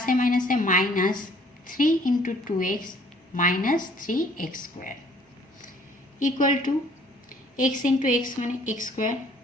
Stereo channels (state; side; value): normal; both; correlation 0.58